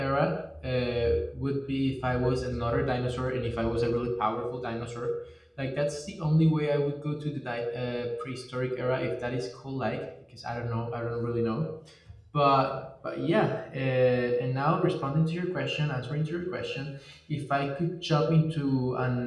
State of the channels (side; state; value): both; identical; correlation 1.00